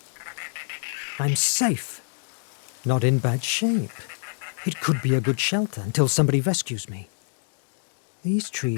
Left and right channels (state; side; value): silent; right; 61 dB below the other